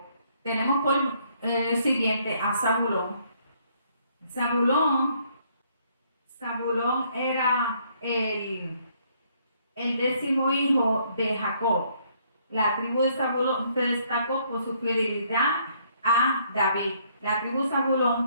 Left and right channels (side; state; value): both; inverted; correlation -0.67